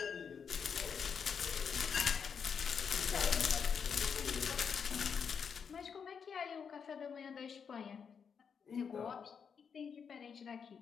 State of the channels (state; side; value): quieter; right; 6.6 dB